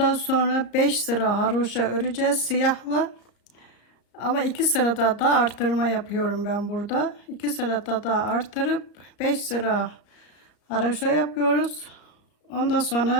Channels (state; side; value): late; right; 34 ms